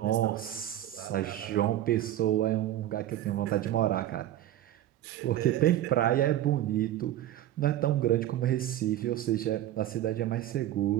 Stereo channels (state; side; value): quieter; left; 12.9 dB